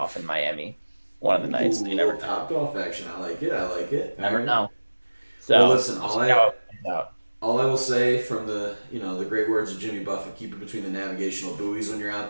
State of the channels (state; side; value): inverted; both; correlation -1.00